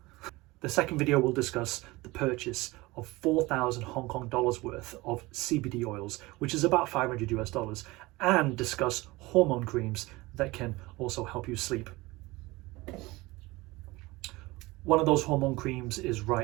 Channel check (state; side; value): quieter; left; 21.3 dB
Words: The second video will discuss the purchase of 4,000 Hong Kong dollars worth of CBD oils, which is about $500 US, and discuss hormone creams that can also help you sleep. One of those hormone creams is